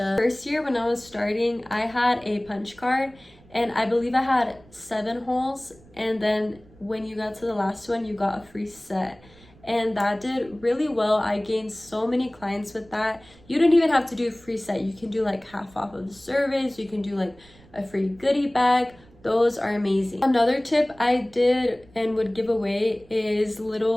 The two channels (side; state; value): right; noise; rumble, 26 dB below the sound